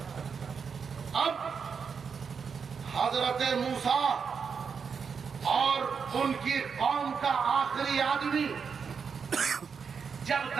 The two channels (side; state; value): left; quieter; 6.1 dB